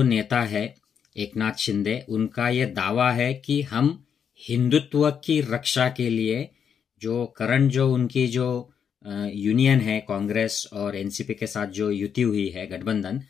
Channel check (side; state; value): right; quieter; 7.6 dB